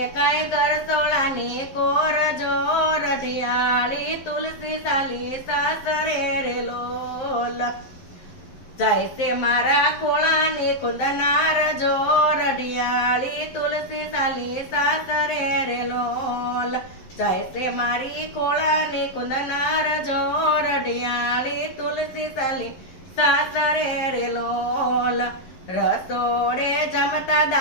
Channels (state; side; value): late; right; 11 ms